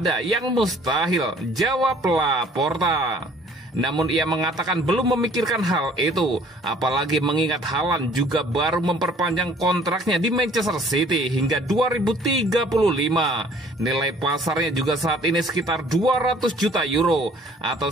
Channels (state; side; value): normal; both; correlation 0.55